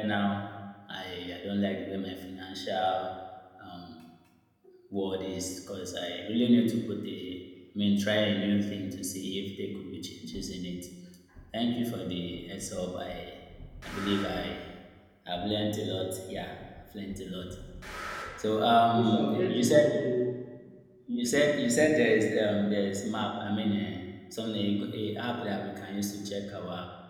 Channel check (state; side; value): identical; both; correlation 1.00